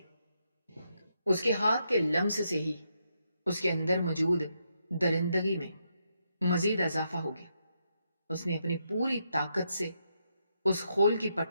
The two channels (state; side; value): inverted; both; correlation -0.80